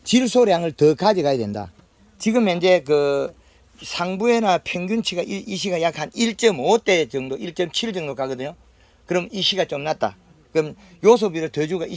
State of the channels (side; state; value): both; identical; correlation 1.00